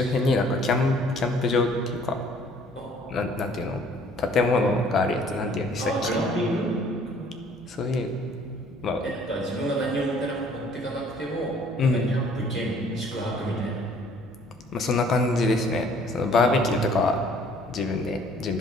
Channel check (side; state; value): both; normal; correlation 0.57